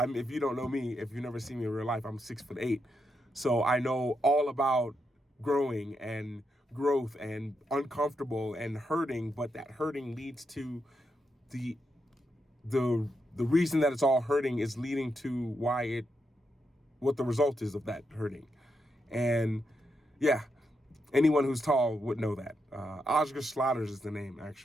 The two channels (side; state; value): both; normal; correlation 0.83